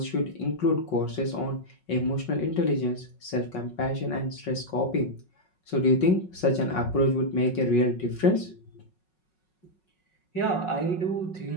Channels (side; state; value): right; late; 5.4 ms